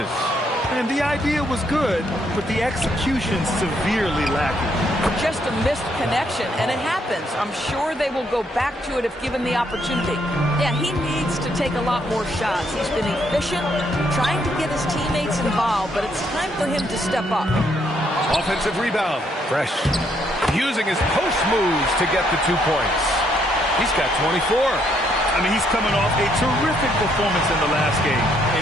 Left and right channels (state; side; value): normal; both; correlation 0.72